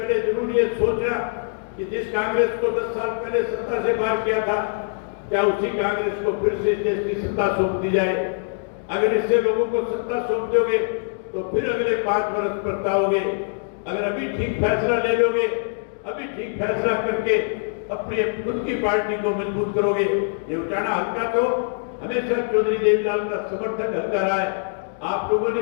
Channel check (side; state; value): right; silent; digital silence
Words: जरूर ये सोचना कि जिस कांग्रेस को 10 साल पहले सत्ता से बाहर किया था, क्या उसी कांग्रेस को फिर से देश की सत्ता सौंप दी जाए। अगर इससे लोगों को सत्ता सौंप दोगे तो फिर अगले 5 वर्ष पछताओगे। अगर अभी ठीक फैसला ले लोगे, अभी ठीक फैसला करके अपनी खुद की पार्टी को मजबूत करोगे। ये उचाना हल्का तो हमेशा चौधरी देवीलाल का समर्थक हल्का रहा है। आप लोगों